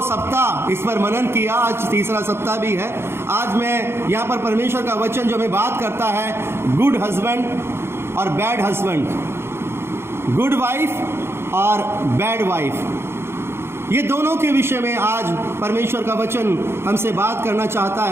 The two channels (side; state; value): left; late; 0.12 ms